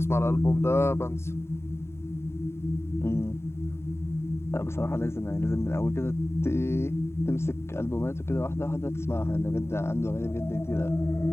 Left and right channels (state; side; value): late; right; 0.12 ms